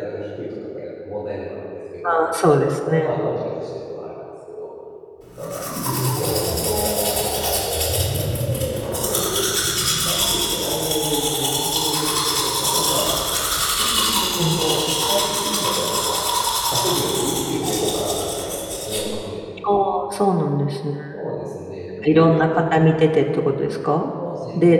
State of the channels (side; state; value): both; identical; correlation 1.00